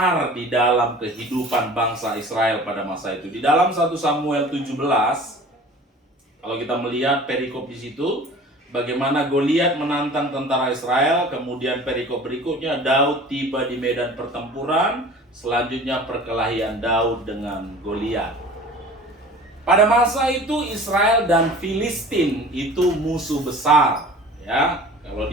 di dalam kehidupan bangsa Israel pada masa itu. Di dalam 1 Samuel 17, kalau kita melihat perikop di situ, bagaimana Goliat menantang tentara Israel, kemudian perikop berikutnya Daud tiba di medan pertempuran, selanjutnya perkelahian Daud dengan Goliat. Pada masa itu Israel dan Filistin itu musuh besar, ya. Kalau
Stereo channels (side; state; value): both; normal; correlation 0.43